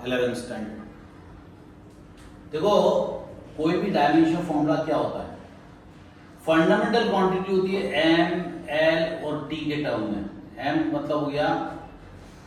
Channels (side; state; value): both; identical; correlation 1.00